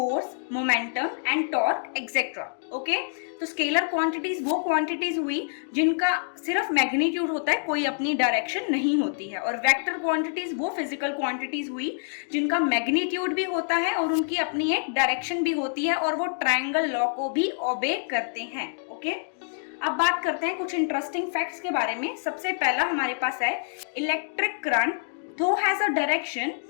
momentum and torque, etcetera. Okay, तो स्केलर क्वांटिटीज वो क्वांटिटीज हुई जिनका सिर्फ मैग्नीट्यूड होता है, कोई अपनी डायरेक्शन नहीं होती है। और वेक्टर क्वांटिटीज वो फिजिकल क्वांटिटीज हुई जिनका मैग्नीट्यूड भी होता है और उनकी अपनी एक डायरेक्शन भी होती है और वो ट्रायंगल लॉ को भी ओबे करते हैं। ओके, अब बात करते हैं कुछ इंटरेस्टिंग फैक्ट्स के बारे में। सबसे पहला हमारे पास है इलेक्ट्रिक करंट दो has a direction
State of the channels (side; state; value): right; silent; digital silence